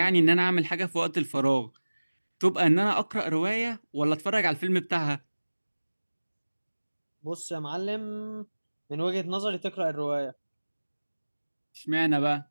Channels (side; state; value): both; inverted; correlation -1.00